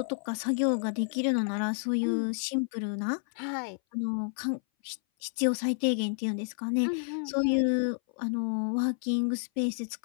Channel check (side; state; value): right; silent; 58 dB below the other